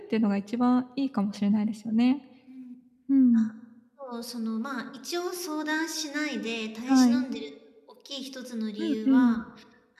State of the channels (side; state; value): both; identical; correlation 1.00